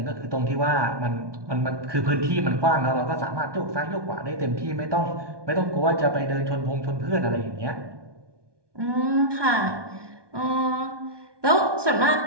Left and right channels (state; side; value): late; left; 1.2 ms